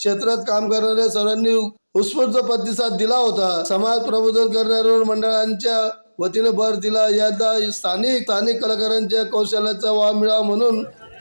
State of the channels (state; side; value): inverted; both; correlation -1.00